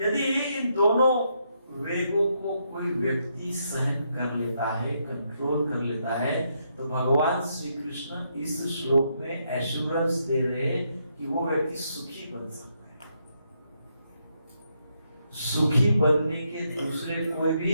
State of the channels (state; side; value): inverted; both; correlation -0.78